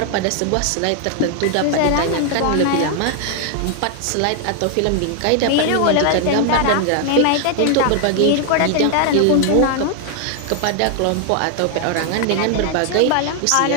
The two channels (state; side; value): different; both; correlation 0.00